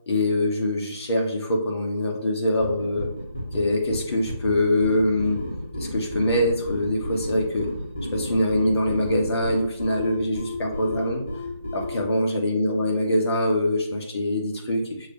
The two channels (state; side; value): inverted; both; correlation -0.77